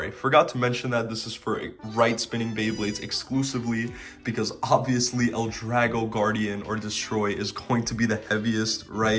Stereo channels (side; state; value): both; identical; correlation 1.00